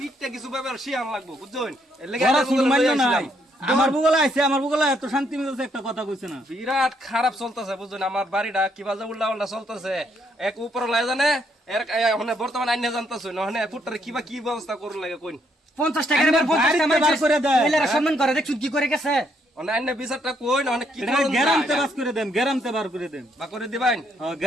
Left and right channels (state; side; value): normal; both; correlation 0.72